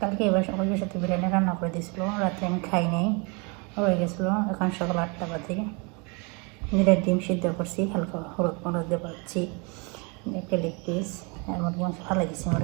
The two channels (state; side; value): quieter; left; 31.6 dB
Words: কালকে এবার ওই সাথে বিরিয়ানি রান্না করে দিয়েছিল, রাত্রে আমি খাই নাই, রয়ে গেছিলো। এখন সকাল 8টা বাজে। নিজের ডিম সিদ্ধ করছি, হালকা হলুদ মরদ দিয়ে পাচ্ছি, একটা লেগ পিস আর মুরগি মাংস ভালো দিচ্ছি।